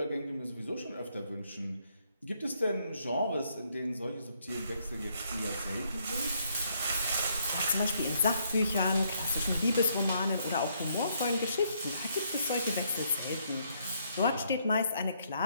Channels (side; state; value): both; inverted; correlation -0.72